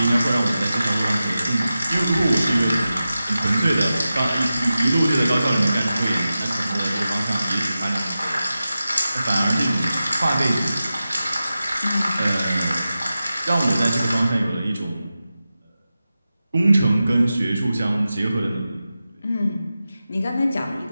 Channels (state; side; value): inverted; both; correlation -0.93